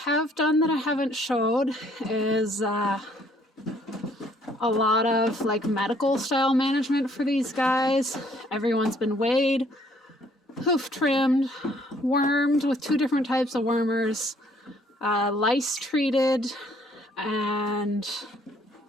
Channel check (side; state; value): both; normal; correlation 0.63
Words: done that I haven't showed is a lot of like medical style management for these guys. Everyone's been weighed, hoof trimmed, wormed with 2 different types of wormers, lice treated, and